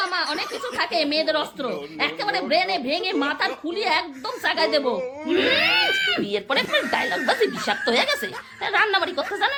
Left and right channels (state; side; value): identical; both; correlation 1.00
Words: অনেক কিছু থাকে, মেয়েদের অস্ত্র। একেবারে ব্রেনে ভেঙে মাথার খুলিয়ে একদম চাগায় দেবো। বিয়ের পরে ডায়লগ বাজি বিষাক্ত হয়ে গেছে, রান্নাবাড়ি করতে জানে